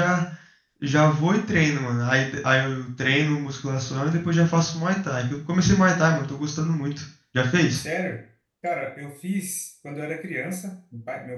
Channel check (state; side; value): identical; both; correlation 1.00